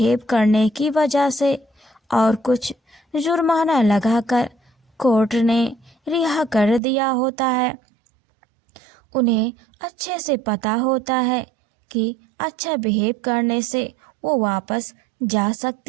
करने की वजह से और कुछ जुर्माना लगाकर कोर्ट ने रिहा कर दिया होता है। उन्हें अच्छे से पता होता है कि अच्छा बिहेव करने से वो वापस जा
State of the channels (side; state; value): left; drops out; at 6.8 s